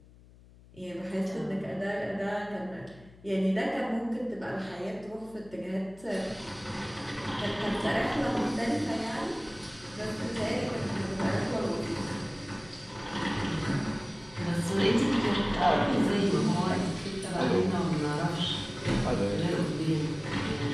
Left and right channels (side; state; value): left; noise; hum, 23 dB below the sound